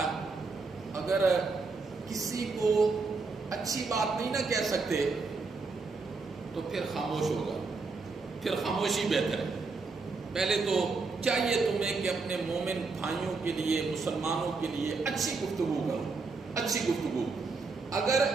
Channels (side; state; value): left; quieter; 4.2 dB